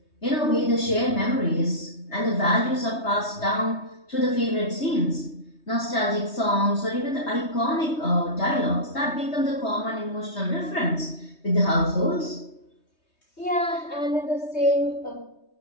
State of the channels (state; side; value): late; right; 3.2 ms